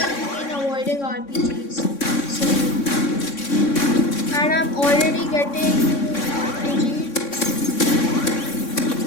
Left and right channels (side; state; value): right; late; 3.6 ms